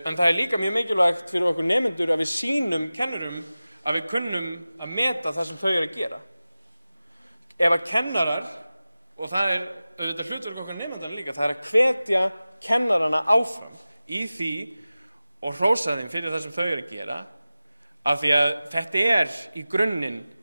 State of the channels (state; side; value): inverted; both; correlation -0.96